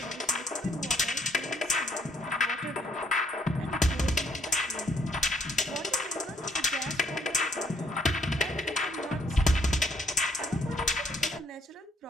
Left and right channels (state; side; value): normal; both; correlation 0.67